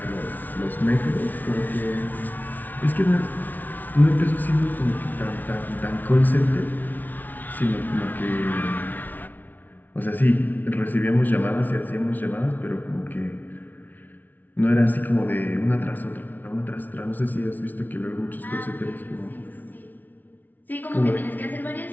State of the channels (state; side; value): late; right; 0.082 ms